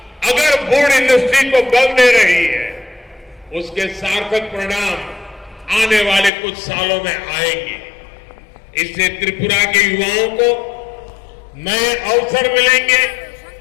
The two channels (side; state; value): right; drops out; at 6.3 s